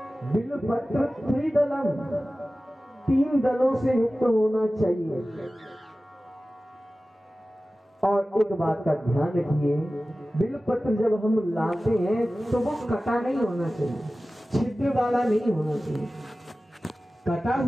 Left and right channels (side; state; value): both; normal; correlation 0.96